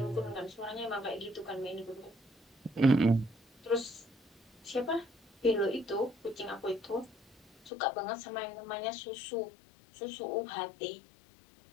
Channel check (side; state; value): right; drops out; at 7.7 s